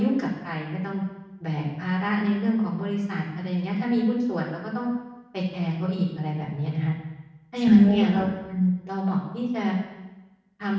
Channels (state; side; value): identical; both; correlation 1.00